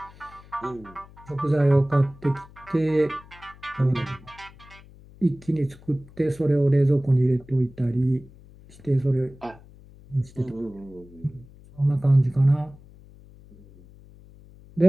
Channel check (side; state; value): left; noise; hum, 23 dB below the sound